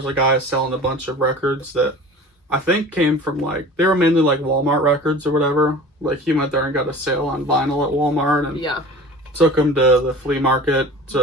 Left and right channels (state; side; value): normal; both; correlation 0.40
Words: a guy selling a bunch of records that I think came from, like, they were mainly like Walmart records or whatever. Like, he went there and got a sale on vinyl at Walmart and took them to the flea market